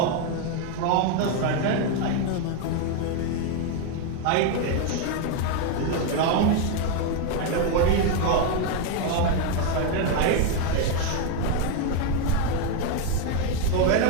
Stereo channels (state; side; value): different; both; correlation 0.01